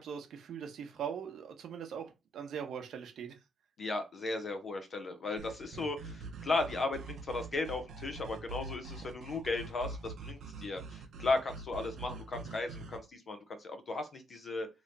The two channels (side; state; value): both; normal; correlation 0.74